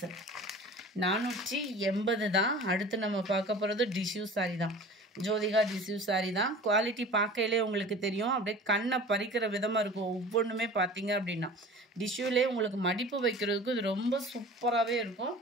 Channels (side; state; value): both; normal; correlation 0.40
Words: 480 தான். அடுத்து நம்ம பார்க்க போகிறது டிஷ்யூ சாரி தான். ஜோதிகா டிஷ்யூ சாரி தான். குவாலிட்டி பார்க்கையிலே உங்களுக்கு தெரியும், அப்படியே கண்ணை பறிக்கிற விதமாக இருக்கும். ஒவ்வொன்றுமே பார்த்தீங்க அப்படின்னா டிஷ்யூலே உங்களுக்கு மடிப்பு வைக்கிறதுக்கு இது ரொம்ப சூப்பராகவே இருக்கும்.